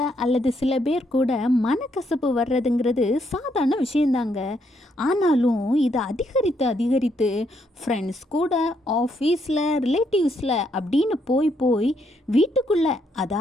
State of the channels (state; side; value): normal; both; correlation 0.74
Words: அல்லது சில பேர் கூட மனக்கசப்பு வர்றதுங்கிறது சாதாரண விஷயந்தாங்க. ஆனாலும் இது அதிகரித்து ஃப்ரெண்ட்ஸ் கூட, ஆஃபீஸில், ரிலேட்டிவ்ஸில் அப்படின்னு போய் வீட்டுக்குள்ளே,